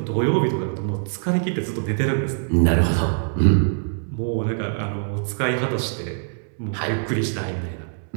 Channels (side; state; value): left; silent; 63 dB below the other